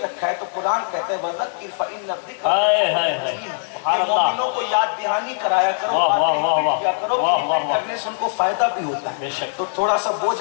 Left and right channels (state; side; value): silent; right; digital silence